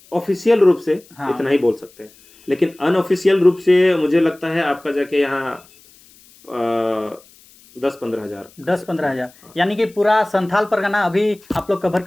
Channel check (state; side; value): noise; left; hiss, 27 dB below the sound